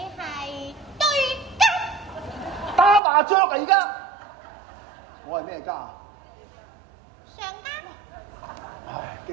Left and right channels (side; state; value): left; drops out; at 3.0 s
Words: 係對家。打麻雀啊！而家我係咩家？上家。唉，